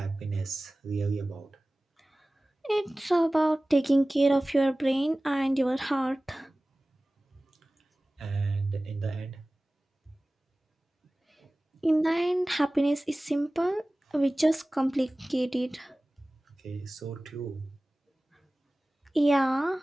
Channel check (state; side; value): normal; both; correlation 0.98